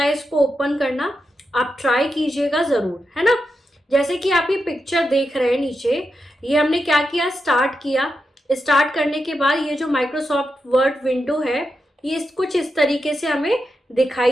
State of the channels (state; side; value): normal; both; correlation 0.87